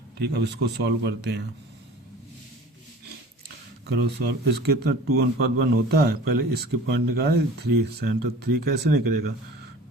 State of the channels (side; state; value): both; normal; correlation 0.42